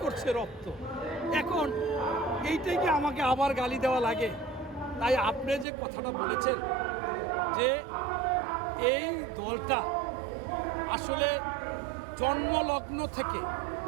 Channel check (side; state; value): left; drops out; at 5.7 s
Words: করছে রক্ত। এখন এইটাই কি আমাকে আবার গালি দেওয়া লাগে? তাই আপনি যে কথাটা বলেছেন যে এই দলটা আসলে জন্মলগ্ন থেকে